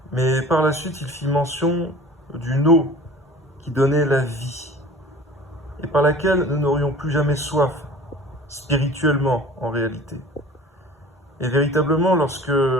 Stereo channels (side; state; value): both; normal; correlation 0.43